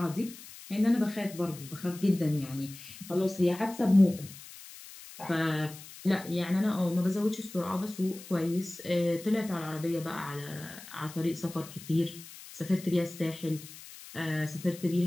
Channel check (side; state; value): left; noise; hiss, 16 dB below the sound